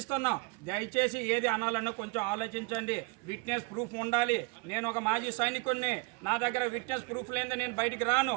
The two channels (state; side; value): quieter; left; 28.4 dB